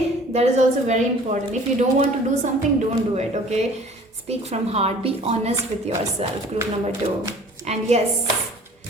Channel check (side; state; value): both; normal; correlation 0.49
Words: that is also very important. If you don't want to do something, don't do it. Okay, speak from heart. Be honest with yourself. Group number 2. And yes,